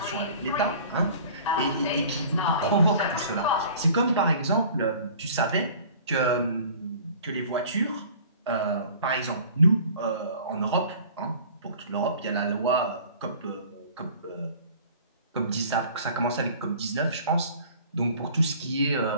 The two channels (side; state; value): both; inverted; correlation -0.47